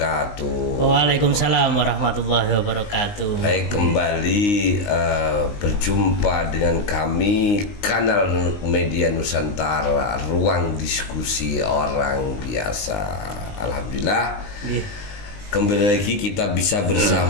Waalaikumsalam warahmatullahi wabarakatuh. Baik, kembali berjumpa dengan kami kanal media Nusantara, ruang diskusi orang biasa. Alhamdulillah, kembali lagi kita bisa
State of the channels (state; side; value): late; right; 19 ms